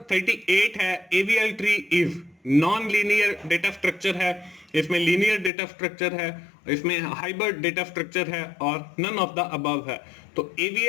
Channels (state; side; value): drops out; right; at 5.5 s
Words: 38 है, AVL tree is non linear data structure है, इसमें लीनियर डेटा स्ट्रक्चर है, इसमें हाइब्रिड डेटा स्ट्रक्चर है और नन ऑफ द अबव है। तो